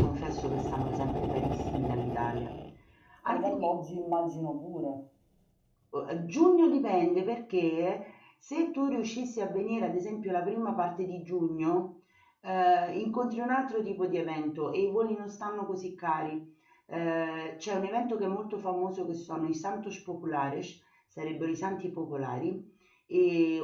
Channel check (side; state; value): both; identical; correlation 1.00